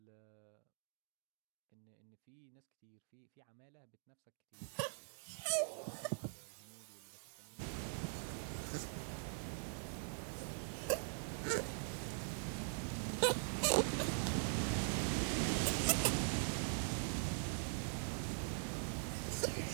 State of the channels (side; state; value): left; silent; digital silence